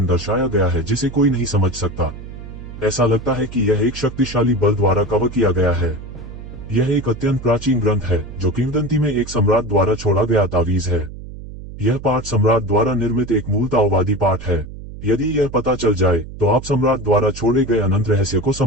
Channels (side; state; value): right; noise; hum, 13 dB below the sound